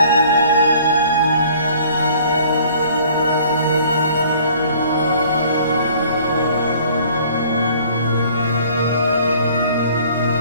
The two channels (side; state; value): both; inverted; correlation -0.54